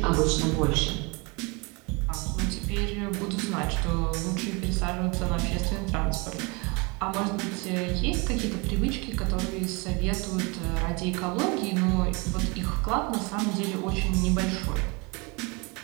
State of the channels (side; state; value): left; quieter; 28.7 dB